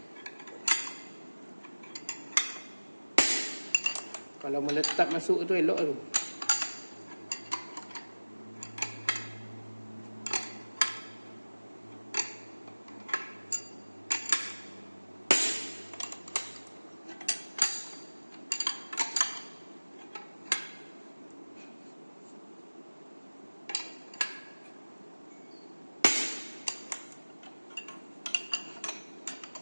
Kalau meletak masuk tu elok tu.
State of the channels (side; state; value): both; inverted; correlation -1.00